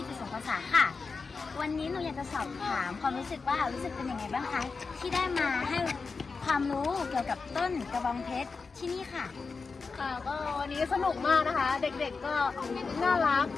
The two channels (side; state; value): right; quieter; 4.6 dB